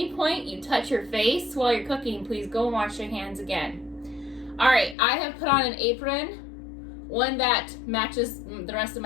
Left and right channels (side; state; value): right; drops out; at 5.0 s